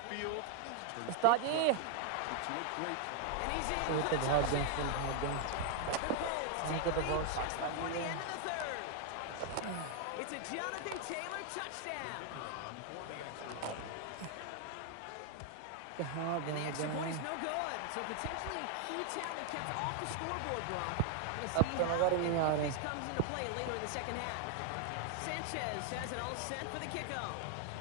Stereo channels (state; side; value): different; both; correlation 0.00